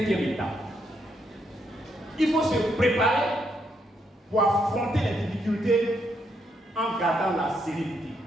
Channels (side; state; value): both; normal; correlation 0.77